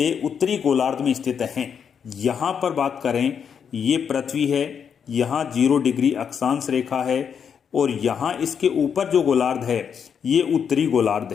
उत्तरी गोलार्ध में स्थित हैं? यहां पर बात करें, ये पृथ्वी है, यहां 0 डिग्री अक्षांश रेखा है और यहां इसके ऊपर जो गोलार्ध है ये उत्तरी गोलार्ध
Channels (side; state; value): right; quieter; 7.3 dB